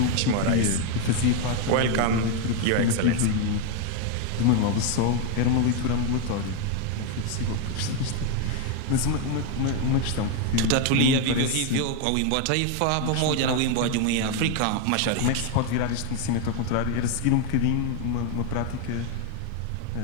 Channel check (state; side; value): different; both; correlation 0.01